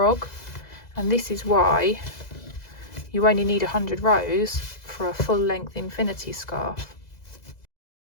and this is why you only need 100 rows for a full length infinity scarf.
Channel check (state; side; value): late; right; 2.0 ms